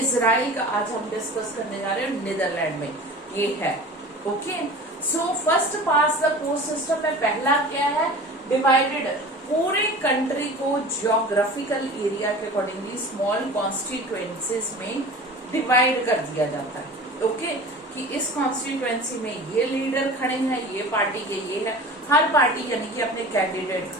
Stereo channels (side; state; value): both; normal; correlation 0.38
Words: का आज हम डिस्कस करने जा रहे हैं, नीदरलैंड में ये है। Okay, so first past the post system में पहला क्या है? डिवाइडेड, पूरे कंट्री को जियोग्राफिकल एरिया के अकॉर्डिंगली स्मॉल कॉन्स्टिट्यूएंसीज में डिवाइड कर दिया जाता है। ओके, कि इस कॉन्स्टिट्यूएंसी में ये लीडर खड़े हैं, ये पार्टी के ये है, हर पार्टी यानी कि अपने कैंडिडेट